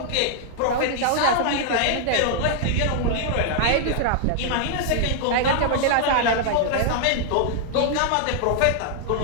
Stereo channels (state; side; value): different; both; correlation -0.01